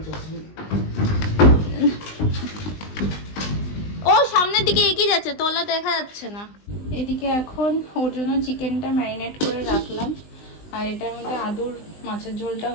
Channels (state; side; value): late; right; 20 ms